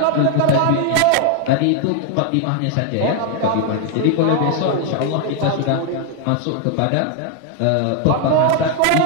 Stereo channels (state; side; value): different; both; correlation 0.00